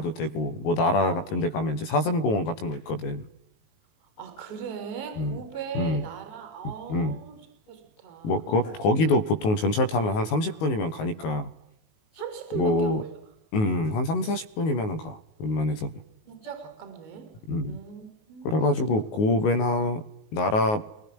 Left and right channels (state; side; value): late; right; 19 ms